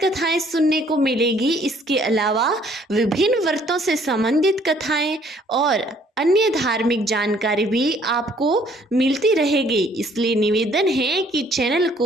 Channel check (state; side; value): normal; both; correlation 0.61